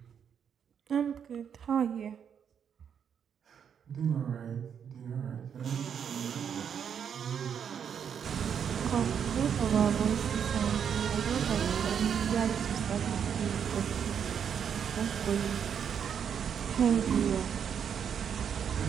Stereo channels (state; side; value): quieter; left; 7.8 dB